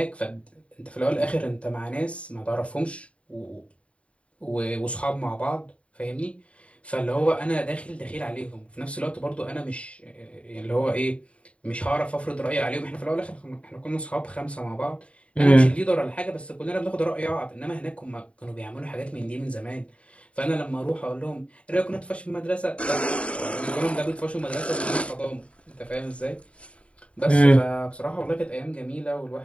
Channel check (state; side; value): late; right; 0.062 ms